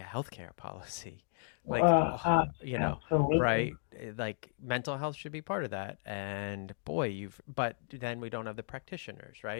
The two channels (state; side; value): silent; right; digital silence